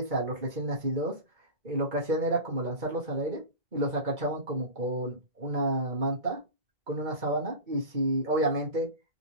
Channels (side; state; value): left; late; 2.2 ms